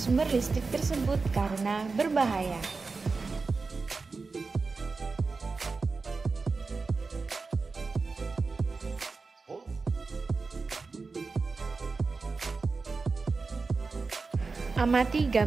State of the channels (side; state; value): left; quieter; 4.2 dB